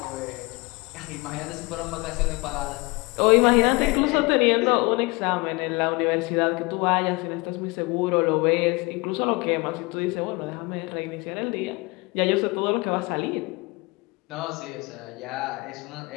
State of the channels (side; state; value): right; quieter; 25.9 dB